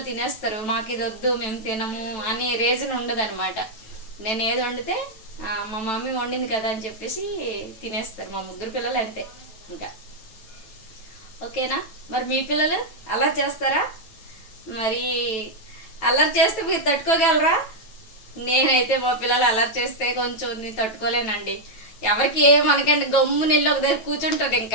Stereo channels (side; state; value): right; late; 9.1 ms